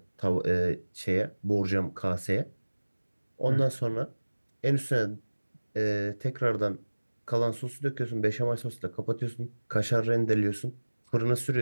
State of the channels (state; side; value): inverted; both; correlation -1.00